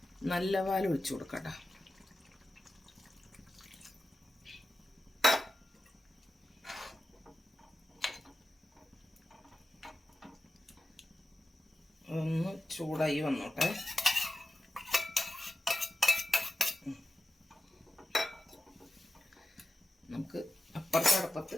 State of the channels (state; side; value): normal; both; correlation 0.93